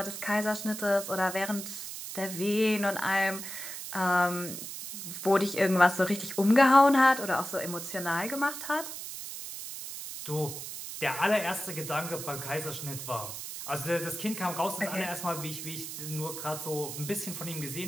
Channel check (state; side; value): noise; right; hiss, 8 dB below the sound